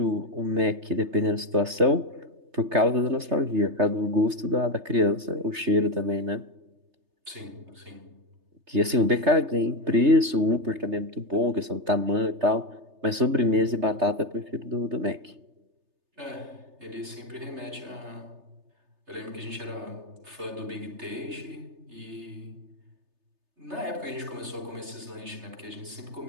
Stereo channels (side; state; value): left; late; 3.3 ms